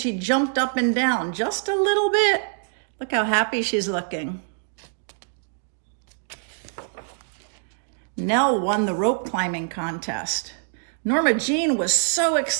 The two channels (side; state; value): left; silent; digital silence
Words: jumped up and down just a little bit. Look how happy she's looking. Nell won the rope climbing contest. Norma Jean was so